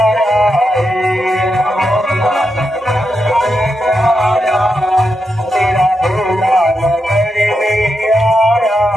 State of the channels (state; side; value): normal; both; correlation 0.85